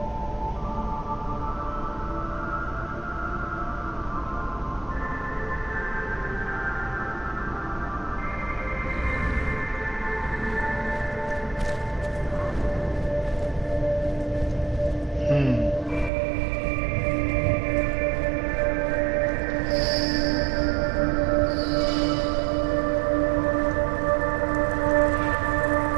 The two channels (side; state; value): left; drops out; at 16.1 s